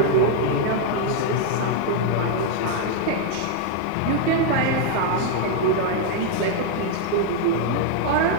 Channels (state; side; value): different; both; correlation 0.00